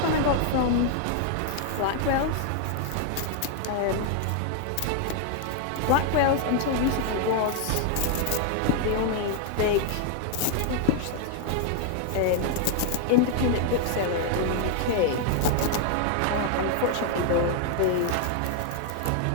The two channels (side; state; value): both; different; correlation 0.00